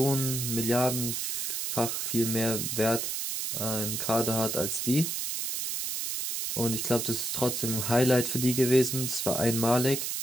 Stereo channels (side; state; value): right; noise; hiss, 2 dB below the sound